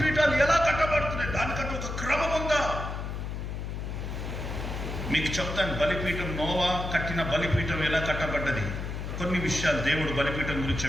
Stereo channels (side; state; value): left; noise; hum, 5 dB below the sound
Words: ఎలా కట్టబడుతున్నాయి? దానికంటే ఒక క్రమం ఉందా? మీకు చెప్తాను. బలిపీఠం, నోవా కట్టిన బలిపీఠం ఎలా కట్టబడ్డది, కొన్ని విషయాలు దేవుడు బలిపీఠం గురించి